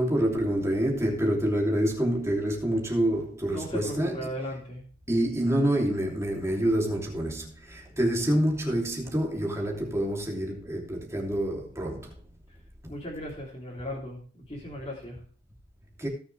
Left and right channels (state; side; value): normal; both; correlation 0.84